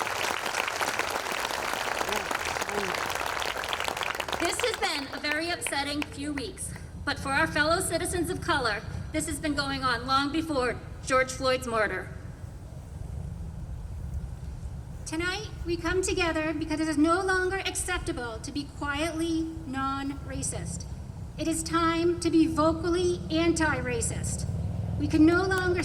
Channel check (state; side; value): identical; both; correlation 1.00